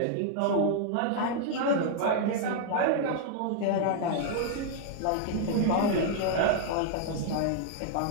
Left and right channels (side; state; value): both; different; correlation 0.00